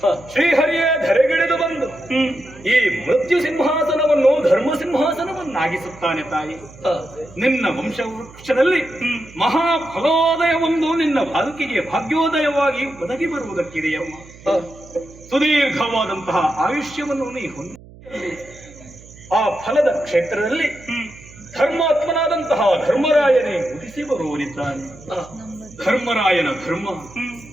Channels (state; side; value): noise; right; hum, 21 dB below the sound